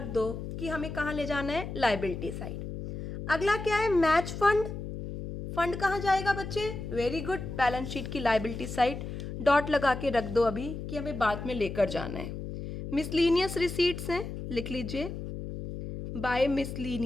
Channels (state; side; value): noise; left; hum, 7 dB below the sound